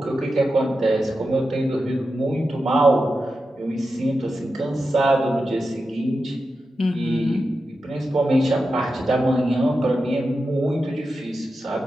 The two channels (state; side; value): normal; both; correlation 0.90